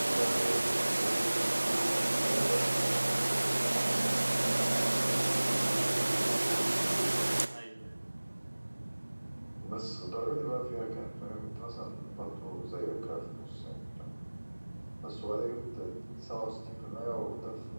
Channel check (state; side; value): inverted; both; correlation -1.00